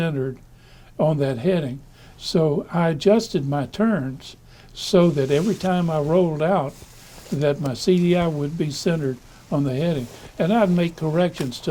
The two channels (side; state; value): both; identical; correlation 1.00